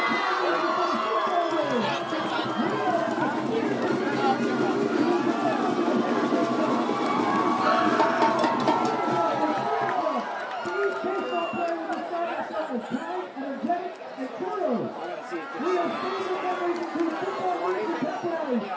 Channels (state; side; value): identical; both; correlation 1.00